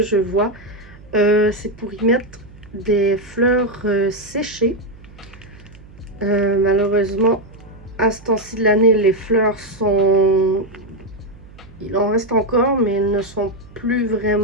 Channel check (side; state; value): right; noise; hum, 21 dB below the sound